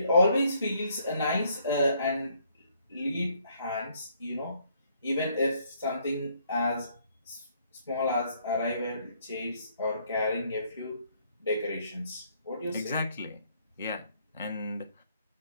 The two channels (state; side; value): inverted; both; correlation -0.67